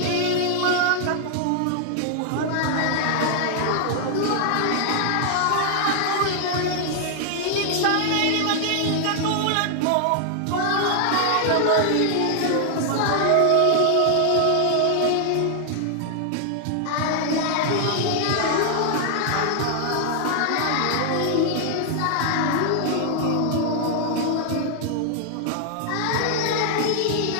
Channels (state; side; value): different; both; correlation 0.00